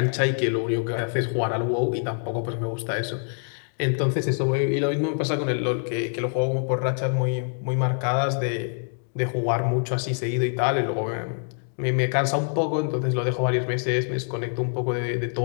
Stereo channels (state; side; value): silent; right; 62 dB below the other